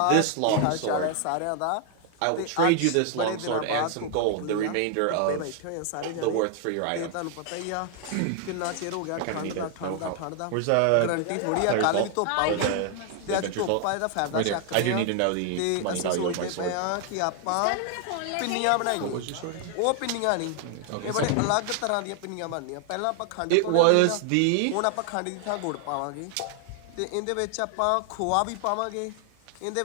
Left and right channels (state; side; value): different; both; correlation 0.00